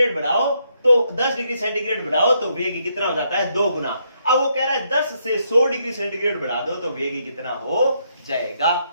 बढ़ाओ तो 10 डिग्री सेंटीग्रेड बढ़ाओ तो वेग कितना हो जाता है, 2 गुना। अब वो कह रहा है 10 से 100 डिग्री सेंटीग्रेड बढ़ा दो तो वेग कितना हो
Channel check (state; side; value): inverted; both; correlation -0.76